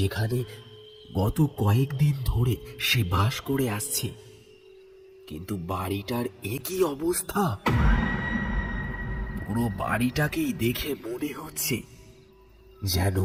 গত কয়েকদিন ধরে সে বাস করে আসছে। কিন্তু বাড়িটার একই অবস্থা। পুরো বাড়িটাকেই দেখে মনে হচ্ছে যেন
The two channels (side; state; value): both; identical; correlation 1.00